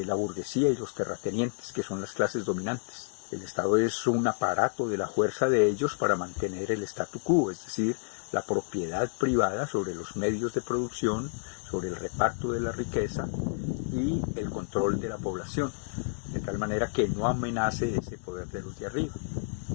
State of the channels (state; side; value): silent; right; digital silence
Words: la burguesía y los terratenientes, que son las clases dominantes. El Estado es un aparato de la fuerza de ellos para mantener el statu quo, es decir, la propiedad privada sobre los medios de producción, sobre el reparto de la riqueza y el control de la población, de tal manera que no amenace ese poder de los de arriba.